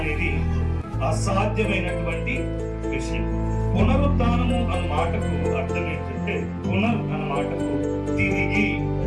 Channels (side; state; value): both; identical; correlation 1.00